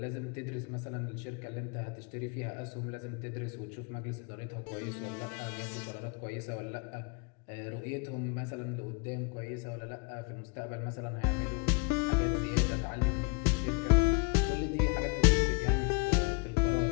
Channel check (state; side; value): quieter; right; 30.4 dB